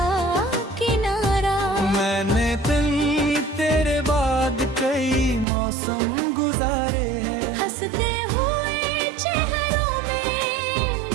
किनारा। मैंने तेरे बाद कई मौसम गुजारे हैं, हंसते हुए चेहरों में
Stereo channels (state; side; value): drops out; left; at 5.5 s